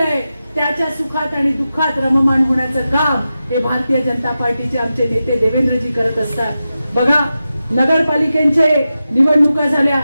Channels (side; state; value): both; inverted; correlation -0.92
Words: त्याच्या सुखात आणि दुःखात रममाण होण्याचं काम हे भारतीय जनता पार्टीचे आमचे नेते देवेंद्रजी करत असतात. बघा, नगरपालिकेचे निवडणुका झाल्या,